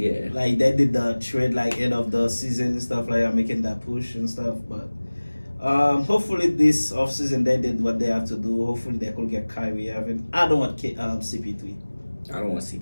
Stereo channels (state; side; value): inverted; both; correlation -1.00